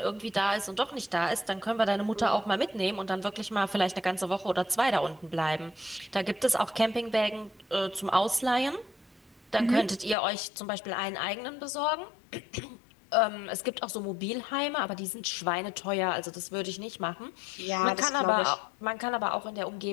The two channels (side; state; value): right; drops out; at 10.2 s